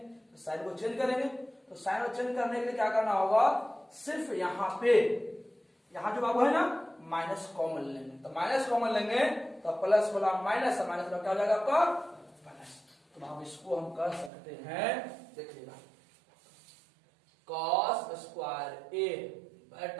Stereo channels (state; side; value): drops out; left; at 14.3 s